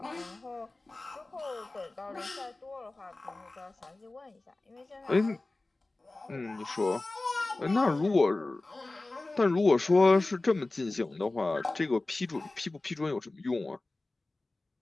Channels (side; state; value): right; quieter; 3.0 dB